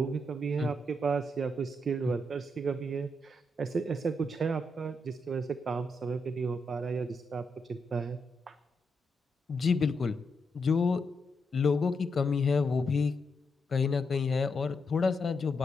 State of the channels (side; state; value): both; normal; correlation 0.82